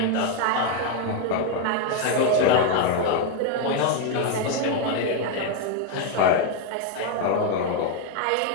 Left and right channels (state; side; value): different; both; correlation 0.01